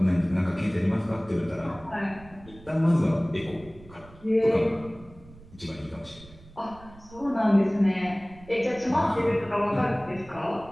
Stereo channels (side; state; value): right; noise; rumble, 21 dB below the sound